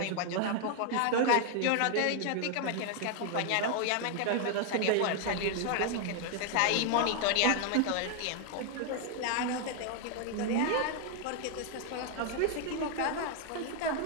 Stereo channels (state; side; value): different; both; correlation 0.00